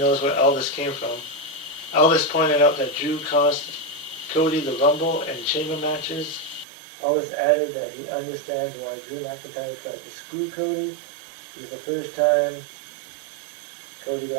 where Aldis came from. Aldis pointed out that Drew cost Cody the Rumble and Chamber matches. Aldis added that he understands why Drew McIntyre tried to screw Cody, because the first time Cody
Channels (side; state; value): left; drops out; at 6.7 s